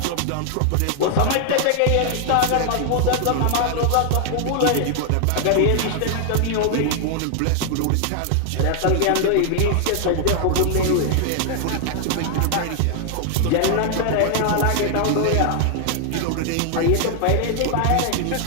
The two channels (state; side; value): different; both; correlation 0.00